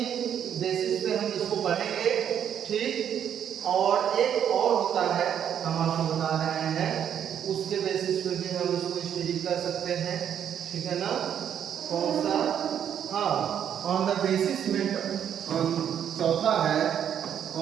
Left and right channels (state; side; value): quieter; left; 9.1 dB